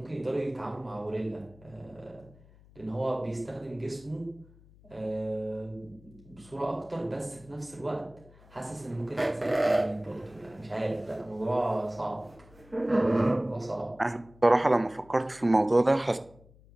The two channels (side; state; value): left; noise; hum, 25 dB below the sound